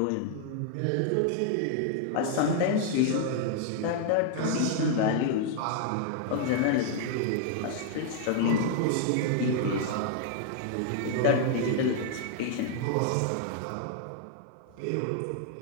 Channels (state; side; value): different; both; correlation 0.00